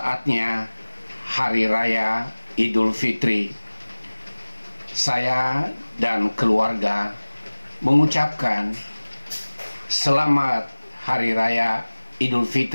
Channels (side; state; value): both; inverted; correlation -1.00